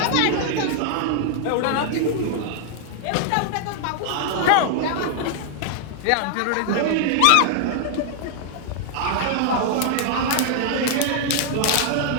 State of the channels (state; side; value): different; both; correlation 0.00